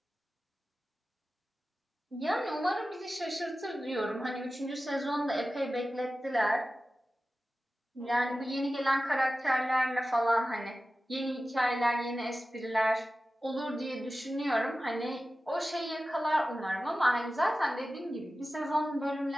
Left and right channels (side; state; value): both; normal; correlation 0.95